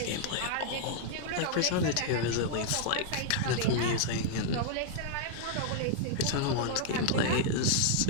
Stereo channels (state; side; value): different; both; correlation -0.01